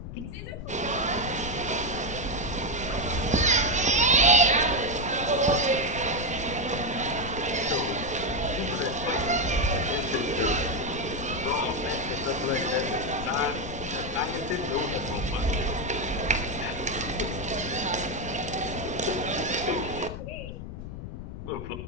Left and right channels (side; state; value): left; noise; rumble, 9 dB below the sound